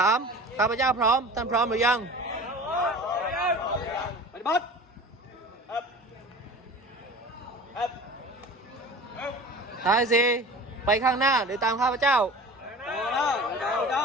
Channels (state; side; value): normal; both; correlation 0.38